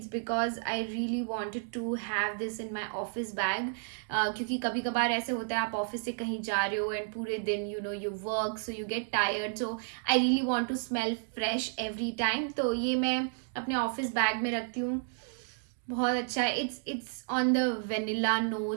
because I really wanted to have this in my office bag, क्योंकि कभी कभार ऐसे होता है आप ऑफिस से कहीं जा रहे हो एंड पूरे दिन you work, so you get tired, so I really want to smell fresh every time. तो ये मैं अपने ऑफिस बैग में रखती हूँ. बहुत अच्छा है. It's on the vanilla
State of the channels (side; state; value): left; silent; digital silence